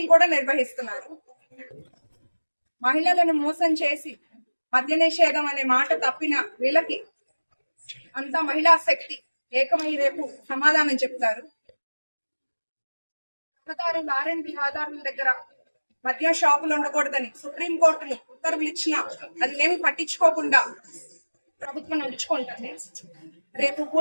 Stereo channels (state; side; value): inverted; both; correlation -1.00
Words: కూడా నిర్వహిస్తున్నారు. మహిళలను మోసం చేసి మద్య నిషేధం అనే మాట తప్పిన వీళ్ళకి అంతా మహిళా శక్తి ఏకమై రేపు సమాధానం చెప్తారు. ఆర్ఎండ్బి ఆధారుల దగ్గర మద్య షాపులు ఉండకూడదని సుప్రీంకోర్టులు ఉత్తర్వులు ఇచ్చినా అది ఏమి పట్టించుకోకుండా ప్రభుత్వం నడుచుకుంటుంది. రేపు